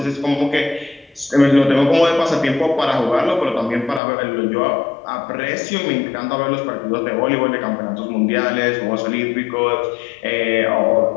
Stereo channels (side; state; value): right; drops out; at 4.0 s